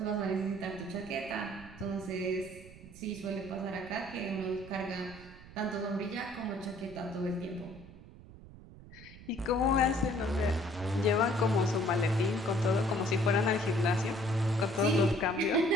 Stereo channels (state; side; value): noise; right; rumble, 18 dB below the sound